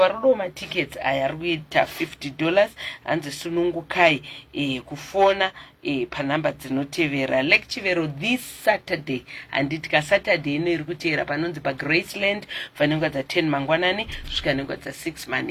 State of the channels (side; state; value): both; identical; correlation 1.00